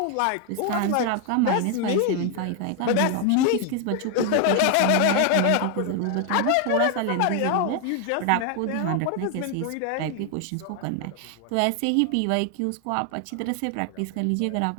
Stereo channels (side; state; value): both; different; correlation 0.00